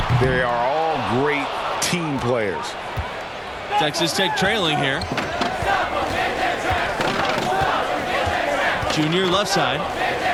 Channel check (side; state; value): both; identical; correlation 1.00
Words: They are all great team players. Texas Tech trailing here. Junior left side.